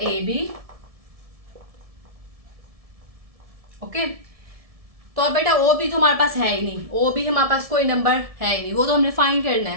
ए बी। ओके, तो अब बेटा ओ बी तो हमारे पास है ही नहीं, ओ बी हमारे पास कोई नंबर है ही नहीं, वो तो हमने फाइंड करना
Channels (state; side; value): late; left; 1.7 ms